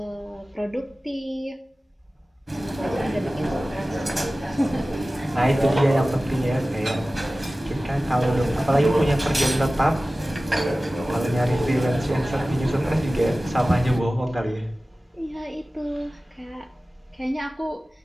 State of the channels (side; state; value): both; normal; correlation 0.97